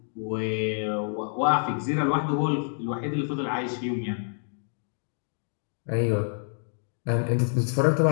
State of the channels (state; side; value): silent; right; digital silence